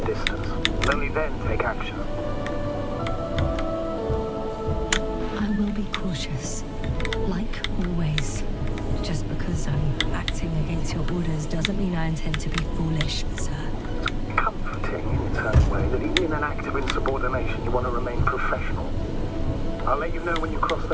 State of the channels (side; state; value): both; identical; correlation 1.00